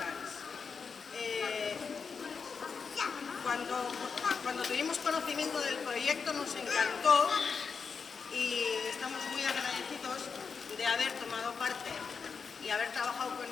Cuando tuvimos conocimiento del proyecto nos encantó y estamos muy agradecidos de haber tomado parte y haber trabajado con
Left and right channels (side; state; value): right; quieter; 5.6 dB